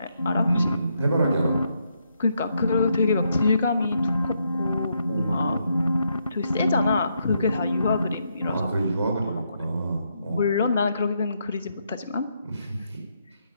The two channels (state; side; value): inverted; both; correlation -0.78